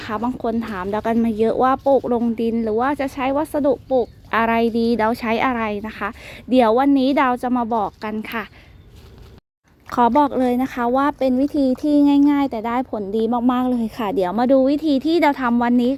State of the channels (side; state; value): both; identical; correlation 1.00